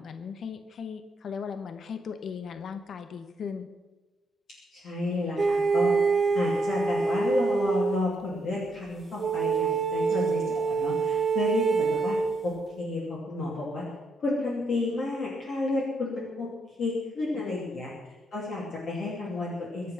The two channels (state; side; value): normal; both; correlation 0.77